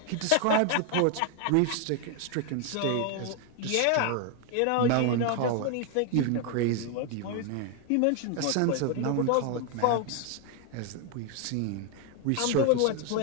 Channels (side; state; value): both; different; correlation 0.01